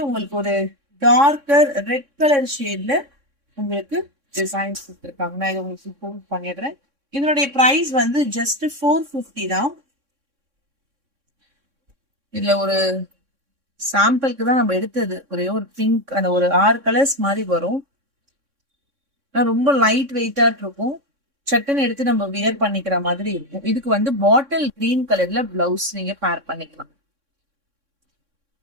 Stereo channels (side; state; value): left; late; 3.6 ms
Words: உங்களுக்கு ஒரு டார்க்கர் ரெட் கலர் ஷேட்ல உங்களுக்கு டிசைன்ஸ் கொடுத்துருக்காங்க. நான் இதை உங்களுக்கு ப்ரூவ் பண்ணிடுறேன். இதனுடைய பிரைஸ் வந்து ஜஸ்ட் 450 தான். இதுல ஒரு சாம்பிளுக்கு தான் நம்ம எடுத்தது. ஒரே ஒரு பிங்க், அந்த ஒரு 6 கலர்ஸ் மாதிரி வரும். ரொம்ப லைட் வெயிட்டா இருக்கும். சட்டுன்னு எடுத்து நம்ம வியர் பண்ணிக்கிற மாதிரி இருக்கும். இதுக்கு வந்து பாட்டில் கிரீன் கலர்ல பிளவுஸ் நீங்க பேர் பண்ணிக்கலாம்.